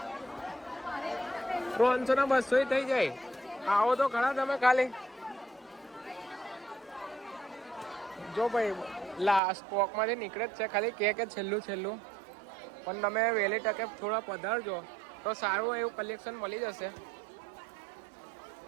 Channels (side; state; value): left; drops out; at 9.4 s